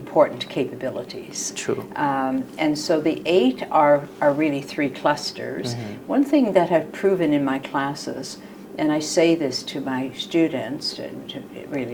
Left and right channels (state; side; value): identical; both; correlation 1.00